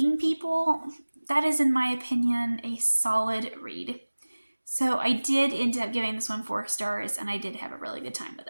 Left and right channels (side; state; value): both; inverted; correlation -1.00